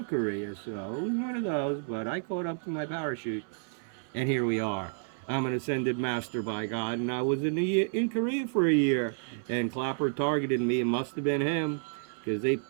Korea, so it was one of those, but I caught up to my parachute, and here we are. I'm an ascended master, by God, and I was in Korea for a year, and Clapper targeted me. It must have been him, because they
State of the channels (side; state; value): left; silent; 58 dB below the other